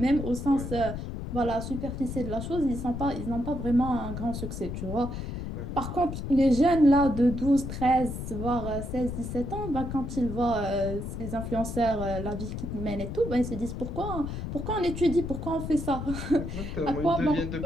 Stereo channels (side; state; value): left; noise; rumble, 6 dB below the sound